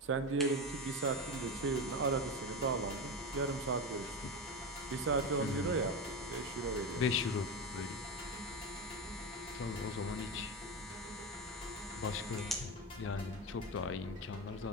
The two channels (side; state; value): both; normal; correlation 0.18